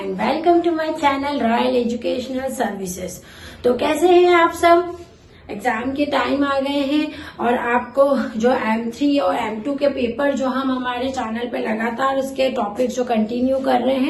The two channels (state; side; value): identical; both; correlation 1.00